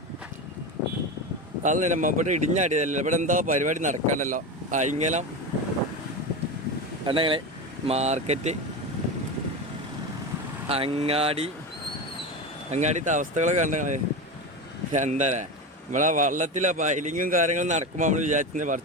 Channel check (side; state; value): both; normal; correlation 0.22